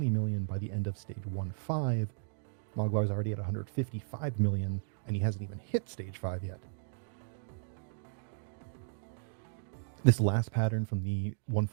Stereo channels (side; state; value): left; silent; digital silence